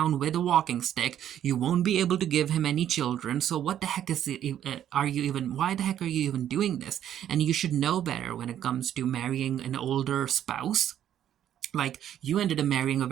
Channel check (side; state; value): left; quieter; 10.7 dB